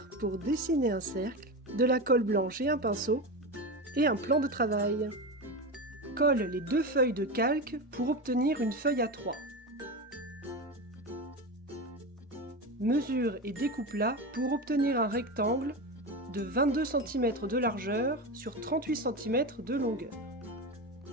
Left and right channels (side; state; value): both; normal; correlation 0.21